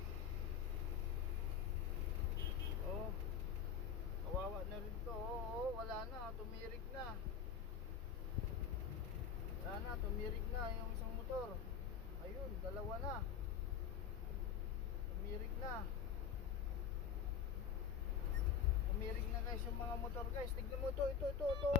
Oh. Kawawa na rin to. Oo, wala na, tumirik na. Wala na, tumirik na yung isang motor. Ayun, dalawa na. Tumirik na. Tumirik na guys yung mga motor guys. Tignan mo ito.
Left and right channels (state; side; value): quieter; right; 7.3 dB